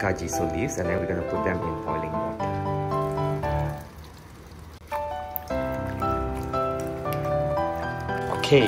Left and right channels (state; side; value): identical; both; correlation 1.00